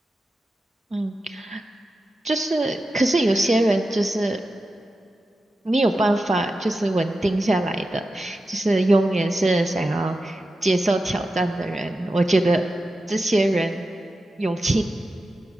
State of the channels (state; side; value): normal; both; correlation 0.91